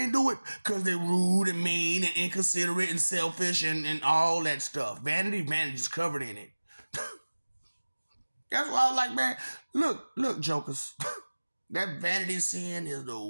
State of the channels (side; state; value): both; inverted; correlation -1.00